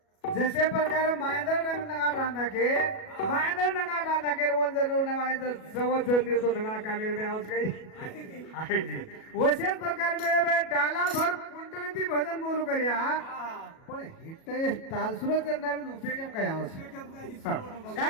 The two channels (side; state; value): right; late; 37 ms